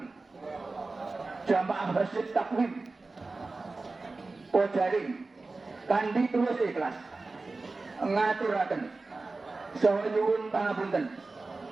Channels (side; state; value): left; quieter; 3.6 dB